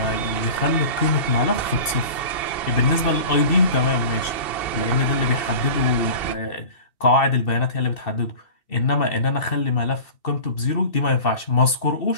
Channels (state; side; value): late; right; 2.7 ms